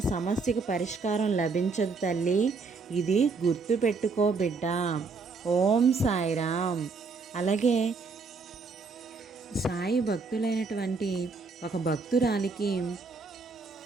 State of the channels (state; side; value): quieter; left; 4.4 dB